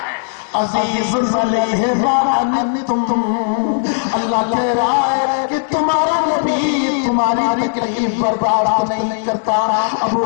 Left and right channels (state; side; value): silent; right; digital silence